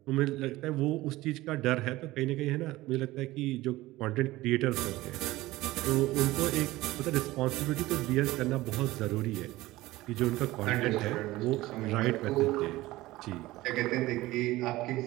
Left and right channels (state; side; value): quieter; left; 18.1 dB